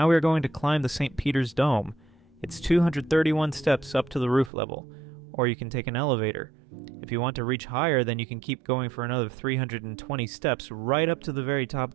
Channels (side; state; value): left; drops out; at 4.5 s